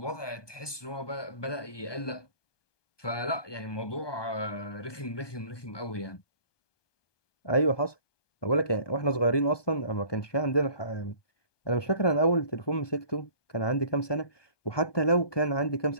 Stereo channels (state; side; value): late; right; 1.2 ms